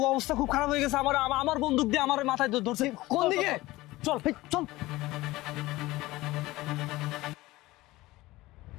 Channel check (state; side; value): quieter; right; 18.9 dB